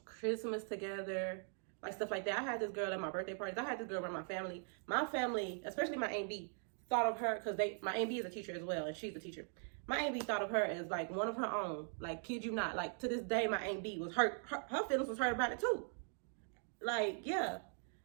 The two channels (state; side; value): silent; left; 50 dB below the other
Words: Christmas together, like stuff like that. I had this girl at my birthday parties. I had this girl around my family. My family, especially my Aunt B, thought of her because my Aunt B is a teacher as well, and she's a teacher. My Aunt B thought of her as like one of her own. Like, kid you not. Like, to this day, my Aunt B was hurt. Her feelings was hurt about it too. Like, yeah.